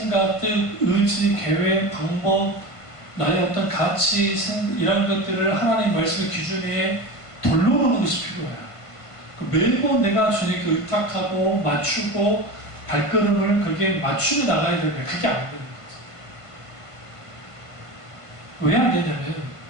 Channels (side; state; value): right; late; 1.5 ms